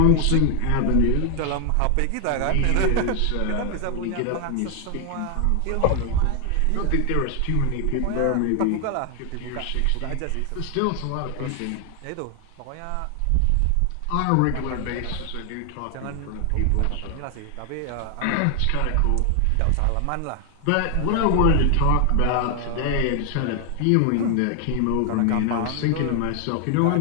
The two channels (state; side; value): different; both; correlation 0.00